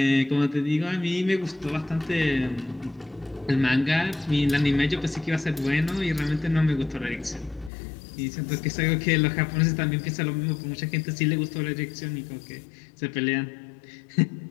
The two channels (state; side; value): drops out; right; at 7.7 s